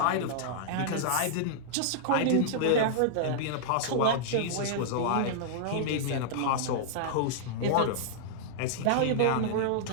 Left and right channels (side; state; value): both; different; correlation -0.02